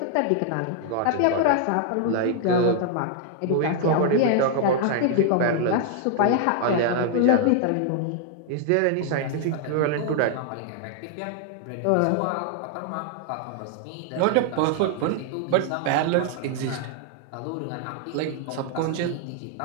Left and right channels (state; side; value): different; both; correlation 0.00